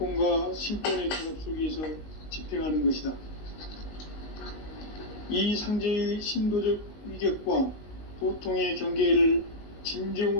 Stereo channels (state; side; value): late; right; 19 ms